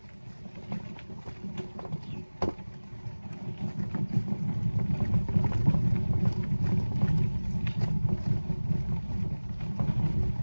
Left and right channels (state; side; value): inverted; both; correlation -1.00